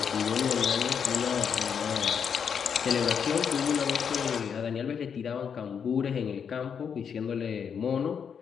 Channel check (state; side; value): quieter; right; 7.1 dB